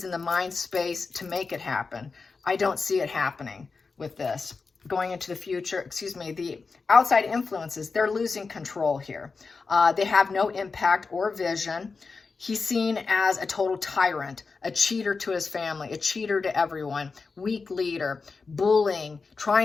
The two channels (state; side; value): quieter; right; 4.5 dB